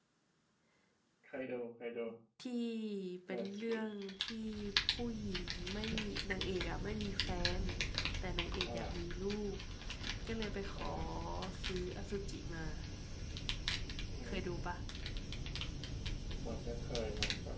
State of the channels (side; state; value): both; identical; correlation 1.00